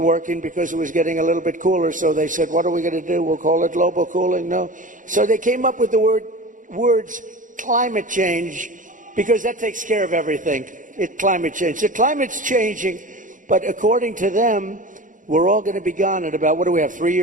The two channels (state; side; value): late; left; 0.38 ms